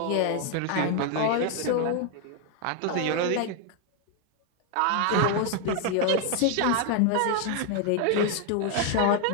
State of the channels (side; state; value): both; different; correlation 0.00